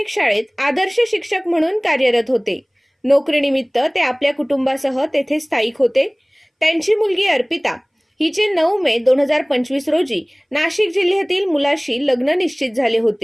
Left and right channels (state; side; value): identical; both; correlation 1.00